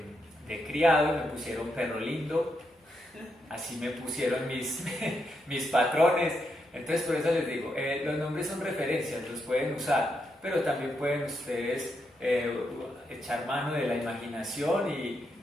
de criado y me pusieron Perro Lindo, así me pusieron mis patrones. Entonces por eso les digo, los nombres son referencias, los pueden usar, pero también pueden ustedes echar mano de la imaginación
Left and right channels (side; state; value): both; normal; correlation 0.82